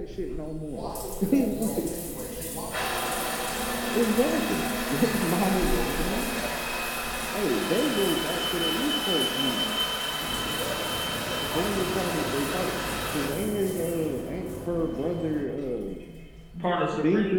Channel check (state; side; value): identical; both; correlation 1.00